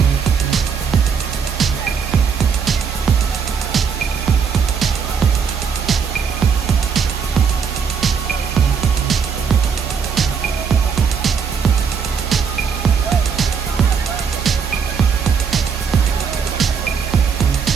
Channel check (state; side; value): quieter; left; 6.5 dB